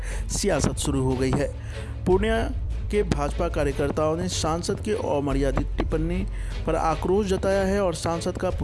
सियासत शुरू हो गई है। पूर्णिया के भाजपा कार्यकर्ताओं ने सांसद के अमर्यादित टिप्पणी पर आक्रोश जताया है और सांसद का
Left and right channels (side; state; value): both; identical; correlation 1.00